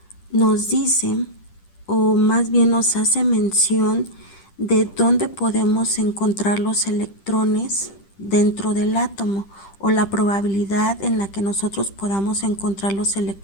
nos dice, o más bien nos hace mención de dónde podemos encontrar los electrones dentro del átomo, o la probabilidad en la que nosotros podamos encontrar los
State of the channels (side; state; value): right; late; 10 ms